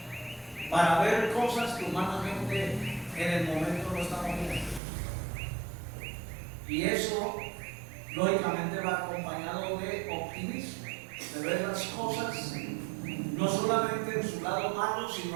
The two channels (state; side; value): drops out; left; at 4.8 s